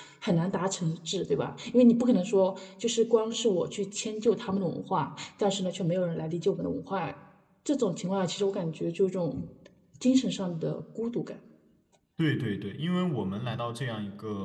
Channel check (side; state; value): both; identical; correlation 1.00